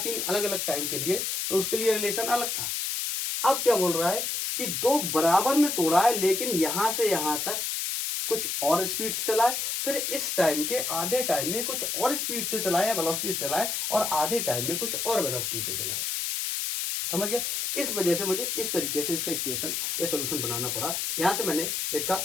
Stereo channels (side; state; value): left; noise; hiss, 1 dB below the sound